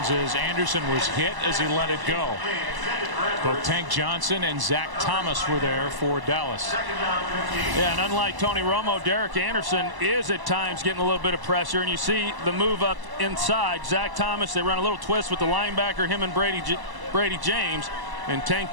as Anderson was hit as he let it go. Both Tank Johnson and Zach Thomas were there for Dallas. Yeah, and unlike Tony Romo, Derek Anderson is at times getting a little bit of pressure, and you see the move up inside. Zach Thomas, they run a little twist with the linebacker, him and Brady James, and Tank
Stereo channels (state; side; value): late; left; 1.1 ms